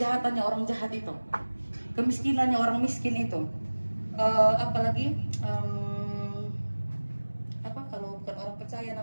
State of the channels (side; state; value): both; inverted; correlation -1.00